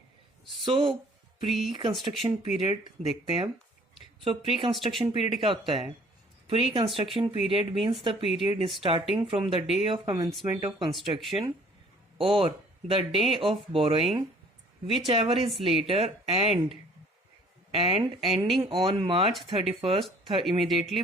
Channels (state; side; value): normal; both; correlation 0.55